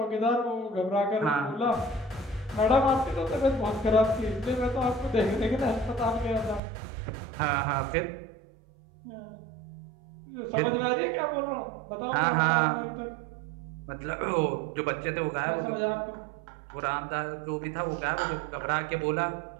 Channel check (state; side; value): drops out; left; at 6.6 s